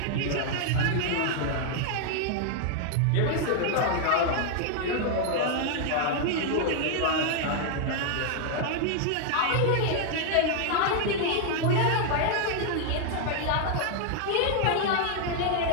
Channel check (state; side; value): different; both; correlation 0.00